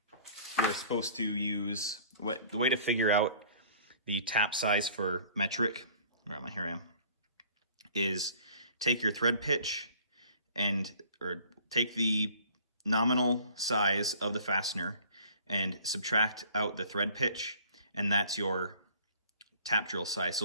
you're supposed to use, the way to figure out the tap size for metric, here I am, is take your thread pitch or take the nominal size of the fastener and subtract out the thread pitch, and that's your tap drill size. So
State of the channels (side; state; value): both; inverted; correlation -0.51